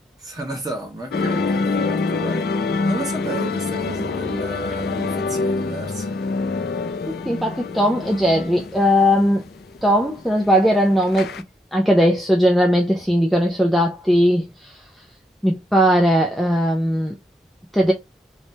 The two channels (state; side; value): normal; both; correlation 0.75